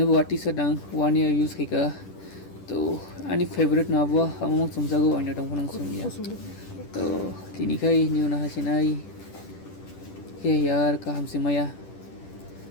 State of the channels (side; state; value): right; late; 10 ms